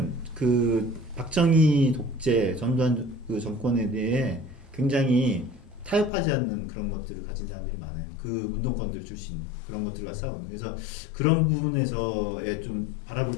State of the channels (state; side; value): drops out; right; at 6.1 s